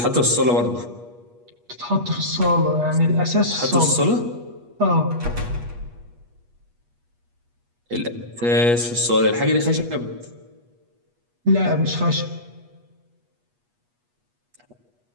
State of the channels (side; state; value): left; late; 8.3 ms